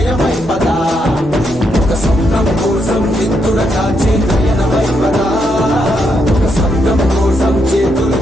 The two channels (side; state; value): both; normal; correlation 0.79